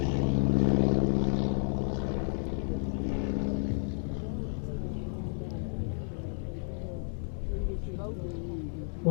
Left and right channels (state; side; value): silent; right; 57 dB below the other